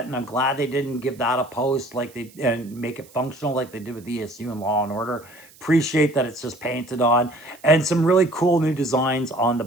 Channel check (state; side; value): noise; right; hiss, 25 dB below the sound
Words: and I'm glad they didn't give that a post like they and make it functional like they did with ESU and Law and Order. Appreciate that it's just painted on, and some really cool new designs on the